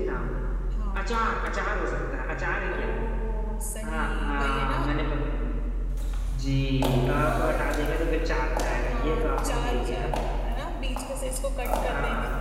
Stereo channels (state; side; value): identical; both; correlation 1.00